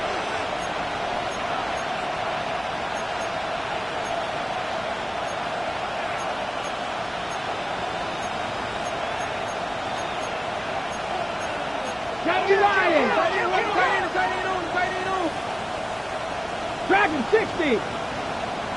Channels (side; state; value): both; identical; correlation 1.00